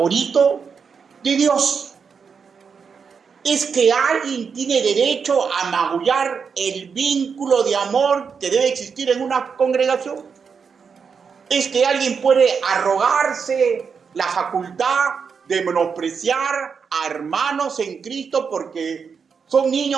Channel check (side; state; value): left; quieter; 6.0 dB